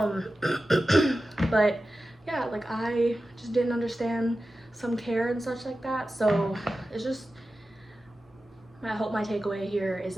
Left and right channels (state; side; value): normal; both; correlation 0.94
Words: But yeah, like I just didn't understand some care and such like that. So it's just, I hope my takeaway here is